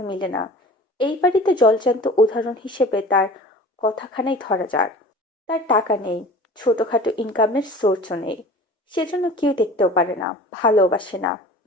মিলে না। এই বাড়িতে জলজান্ত উদাহরণ হিসেবে তার কথাখানাই ধরা যাক। তার টাকা নেই, ছোটখাটো ইনকামের সোর্সও নেই, সেজন্য কেউ দেখতেও পারে না, ভালোবাসে না।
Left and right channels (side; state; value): both; normal; correlation 0.41